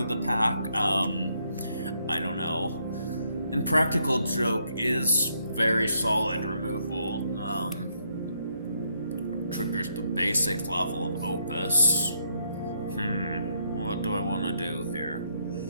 the pack. I don't know. And Practical Joke is very solid removal. Triggers the basic level of Opus. What do I want to do here?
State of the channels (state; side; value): inverted; both; correlation -0.75